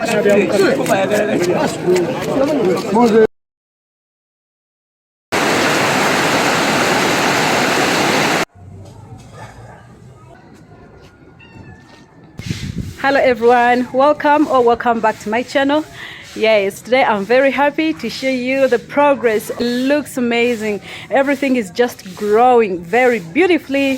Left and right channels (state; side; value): identical; both; correlation 1.00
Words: Hello everyone, welcome back to my channel. Yes, today I'm very happy to show you the progress. It looks amazing. Everything is just growing very